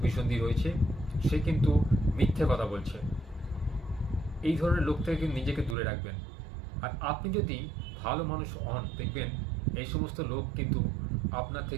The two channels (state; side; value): drops out; left; at 5.8 s